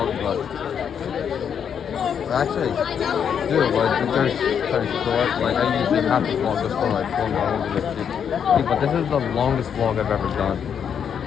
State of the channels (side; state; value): right; quieter; 7.8 dB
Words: but actually do but there's kind of short. Like I usually have to vlog just for like 4 hours. But this is the longest vlog I've ever done.